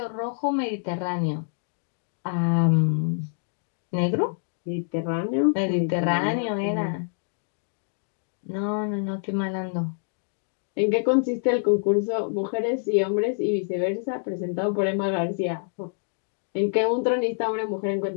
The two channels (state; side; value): silent; right; digital silence